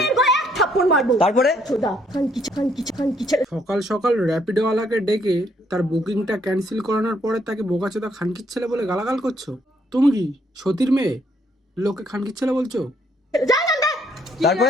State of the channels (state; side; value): normal; both; correlation 0.69